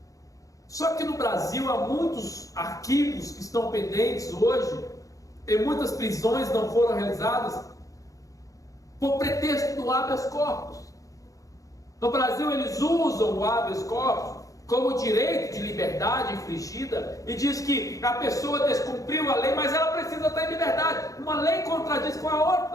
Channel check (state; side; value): late; right; 0.16 ms